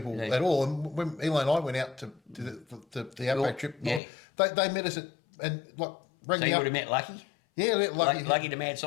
at all, and when Eli and I went out to the Outback trip, they met us rang so me you up. would have met Lucky? Yeah, Lucky the mad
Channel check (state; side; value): drops out; right; at 4.0 s